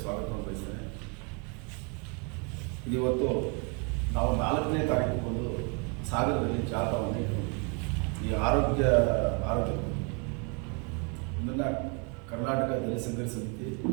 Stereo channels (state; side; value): quieter; left; 34.7 dB